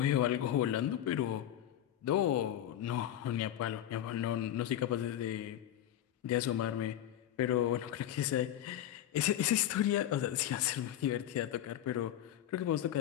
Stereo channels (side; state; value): right; quieter; 11.6 dB